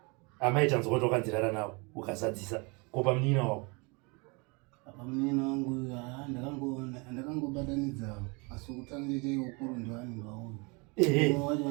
amaitanzwa kuti wakanzirara nawo ukazadzisa ko pamunina wako? Pamunina wangu ndakangobatanidzawo asi kutanga cheche ukuru ndiwani ndwauyu wacho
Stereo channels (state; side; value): quieter; left; 29.7 dB